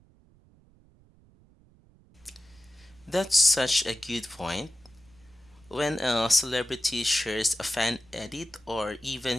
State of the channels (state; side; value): noise; right; rumble, 29 dB below the sound